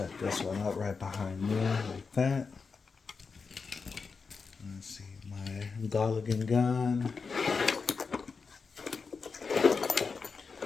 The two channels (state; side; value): quieter; right; 5.0 dB